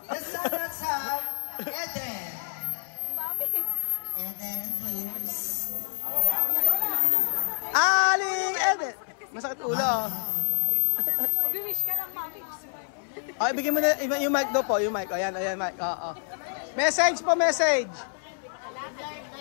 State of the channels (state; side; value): silent; right; 60 dB below the other